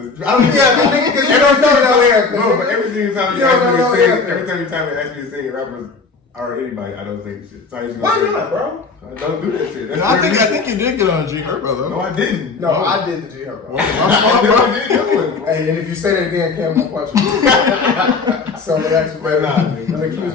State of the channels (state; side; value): quieter; right; 4.4 dB